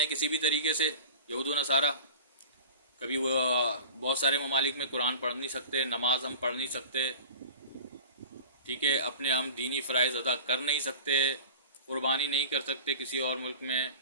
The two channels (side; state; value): both; inverted; correlation -0.37